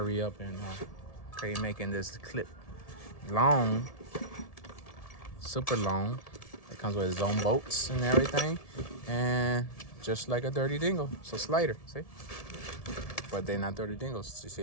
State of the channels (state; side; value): late; right; 1.7 ms